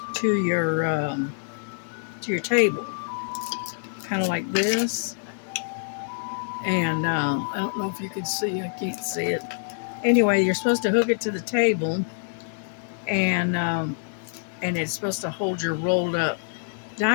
to your table, kind of like this. And I don't know if you can see, I can't see it. Anyway, you're supposed to hook it to the table, and it's supposed to hold your rolled up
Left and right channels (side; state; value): right; silent; digital silence